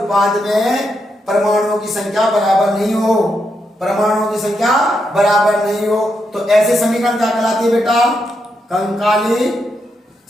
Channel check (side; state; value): both; normal; correlation 0.82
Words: में परमाणुओं की संख्या बराबर नहीं हो, परमाणुओं की संख्या बराबर नहीं हो, तो ऐसे समीकरण क्या कहलाती है बेटा, कंकाली